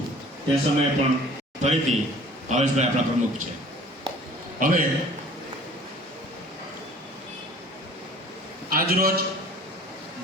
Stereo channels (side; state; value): both; normal; correlation 0.49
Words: તે સમયે પણ ફરીથી ભાવેશભાઈ આપણા પ્રમુખ છે. હવે આજરોજ